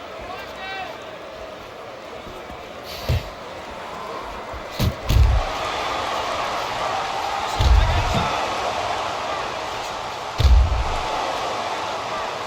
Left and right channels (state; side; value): identical; both; correlation 1.00